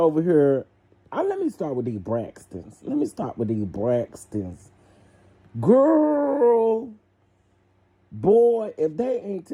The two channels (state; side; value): identical; both; correlation 1.00